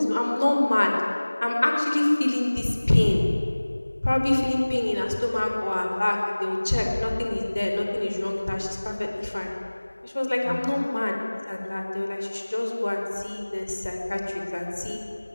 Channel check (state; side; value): inverted; both; correlation -1.00